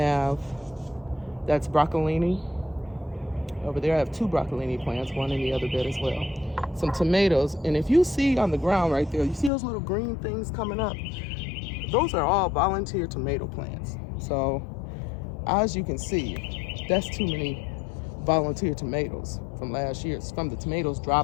that's broccolini. Over there I have 2 broccolini plants, one in the other bed as well. Some tomatoes, and if you see on the ground right there, you see those little green things coming up? Those are all volunteer tomato plants. So as you can see, that's too many volunteer tomatoes from last year. It's from the tomatoes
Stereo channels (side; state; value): right; drops out; at 9.5 s